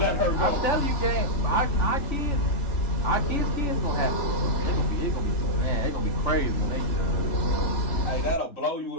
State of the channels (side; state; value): right; late; 3.5 ms